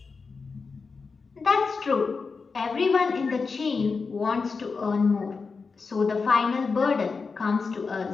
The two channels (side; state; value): right; quieter; 4.7 dB